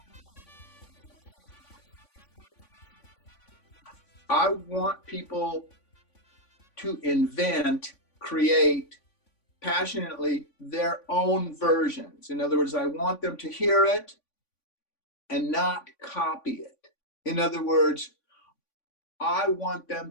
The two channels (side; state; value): right; late; 3.5 ms